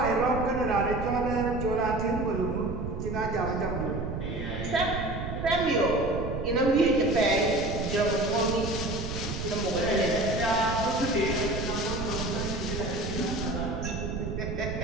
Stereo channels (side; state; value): right; noise; rumble, 5 dB below the sound